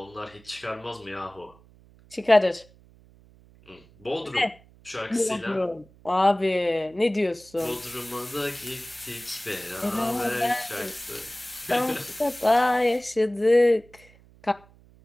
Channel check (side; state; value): right; noise; hum, 26 dB below the sound